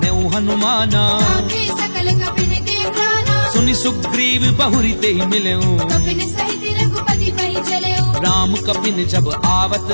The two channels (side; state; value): both; inverted; correlation -1.00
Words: नेउ हनुमाना आखे सकल कपिन के प्राणा सुनि सुग्रीव बहुरी ते मिलेऊ कपिन सहित रघुपति पहि चलेऊ राम कपिन जब आवत